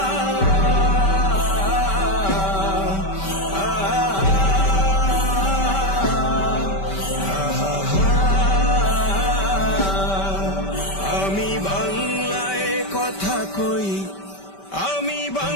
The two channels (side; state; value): right; late; 5.2 ms